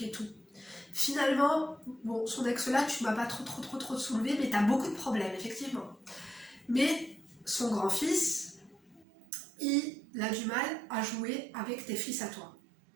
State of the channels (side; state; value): left; drops out; at 9.1 s